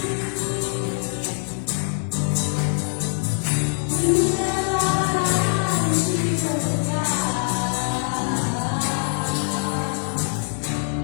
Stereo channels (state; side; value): silent; right; 63 dB below the other